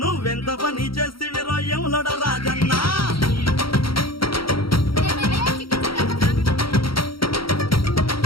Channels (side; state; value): right; late; 0.74 ms